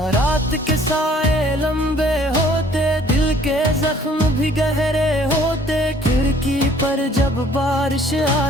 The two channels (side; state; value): both; normal; correlation 0.57